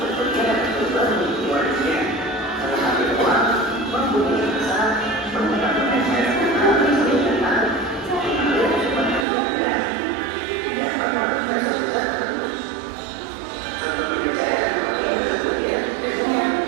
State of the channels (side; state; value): left; drops out; at 9.2 s